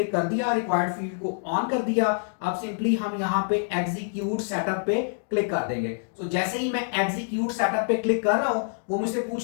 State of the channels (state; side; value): silent; right; digital silence